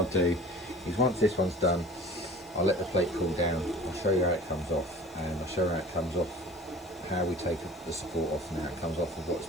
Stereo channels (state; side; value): noise; left; hiss, 26 dB below the sound